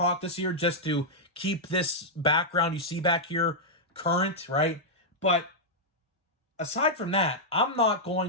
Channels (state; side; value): normal; both; correlation -0.06